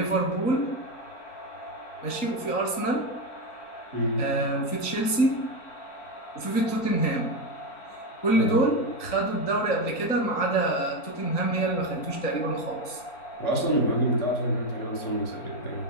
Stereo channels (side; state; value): right; late; 3.9 ms